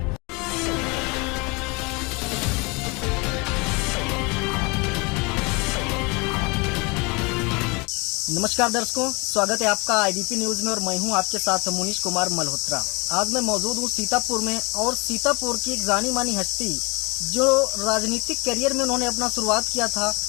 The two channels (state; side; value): quieter; right; 28.1 dB